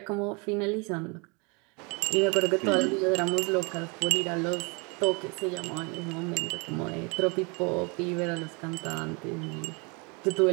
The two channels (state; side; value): quieter; left; 31.2 dB